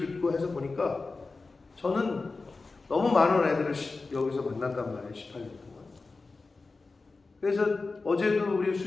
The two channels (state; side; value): quieter; right; 3.8 dB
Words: 해서 보니까 저는 너무 많은 애들을 여기서 만났단 말이에요, 18년 동안. 그래서 어제도 우리